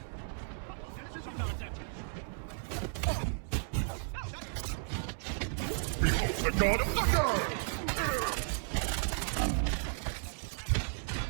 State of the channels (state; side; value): silent; left; 55 dB below the other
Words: Behold the god of thunder!